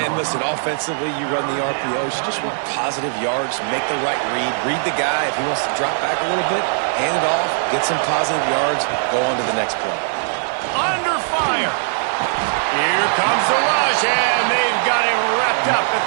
listen, offensively, you run the RPOs. You just want positive yards, make the right read the guy. If he wants to drop back a little bit, hand it off, get some positive yards, go on to the next play. Under fire. Here comes the rush, and they've got him wrapped up at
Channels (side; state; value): left; silent; digital silence